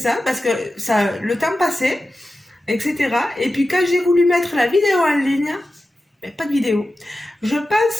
parce que le temps passait, etc. Et puis quand j'ai voulu mettre la vidéo en ligne, pas de vidéo. Je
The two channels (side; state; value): both; normal; correlation 0.93